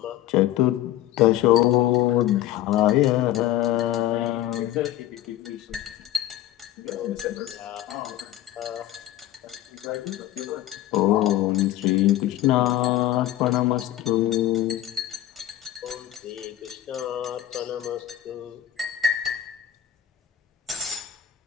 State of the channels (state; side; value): quieter; right; 13.0 dB